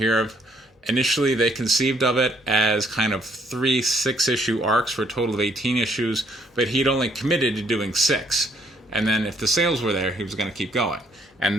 of initially they conceived of it as kind of 3 6-issue arcs for a total of 18 issues, but he'd only committed to doing 6. And then if the sales were there, he was going to keep going.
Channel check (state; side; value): normal; both; correlation 0.67